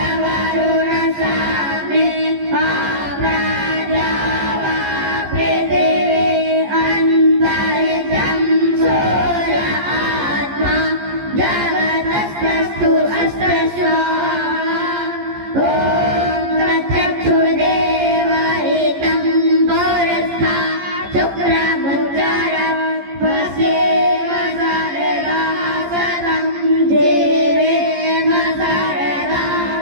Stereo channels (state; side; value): late; left; 14 ms